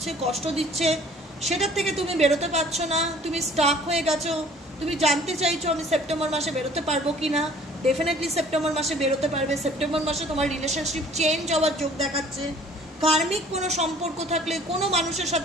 কষ্ট দিচ্ছে। সেটার থেকে তুমি বেরোতে পারছো না, তুমি স্টাক হয়ে গেছো। তুমি জানতে চাইছো আমি সেপ্টেম্বর মাসে বেরোতে পারবো কি না। ডেফিনেটলি সেপ্টেম্বর মাসে বেরোতে পারবে। সেপ্টেম্বর মাসে তোমার রিলেশনশিপ চেঞ্জ হওয়ার যোগ দেখাচ্ছে। কার্মিক কোনো সম্পর্ক থাকলে কোনো মানুষের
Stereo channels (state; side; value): normal; both; correlation 0.52